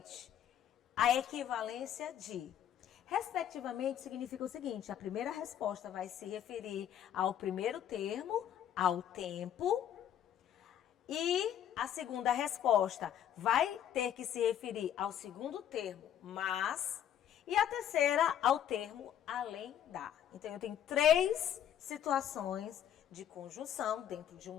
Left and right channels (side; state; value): right; quieter; 10.1 dB